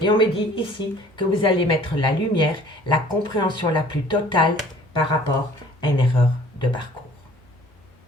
on me dit ici que vous allez mettre la lumière, la compréhension la plus totale par rapport à une erreur de parcours.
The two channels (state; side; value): normal; both; correlation 0.52